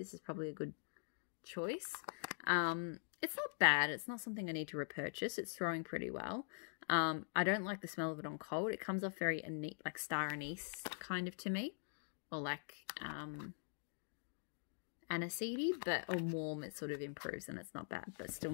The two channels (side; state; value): right; silent; digital silence